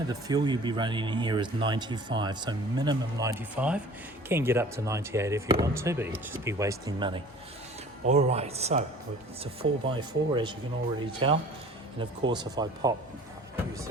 the fuel you'll be running in here is 95, so minimum 95. Can get up to 98 if you want to, but you'd just be wasting money. All right, so it's a 4x4 as you can already tell, and of course if I use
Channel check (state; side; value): normal; both; correlation 0.46